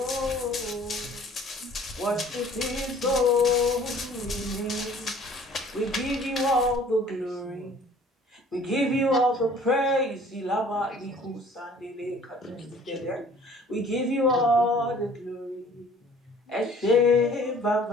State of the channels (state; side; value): normal; both; correlation 0.52